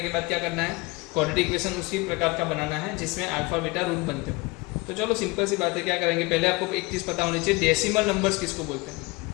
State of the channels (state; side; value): quieter; right; 24.6 dB